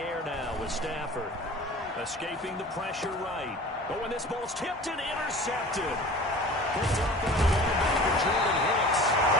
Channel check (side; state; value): both; normal; correlation 0.41